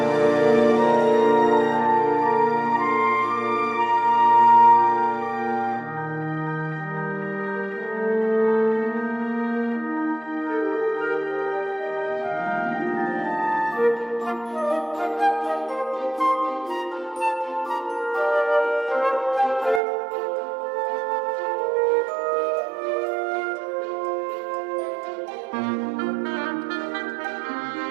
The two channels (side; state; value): left; drops out; at 19.8 s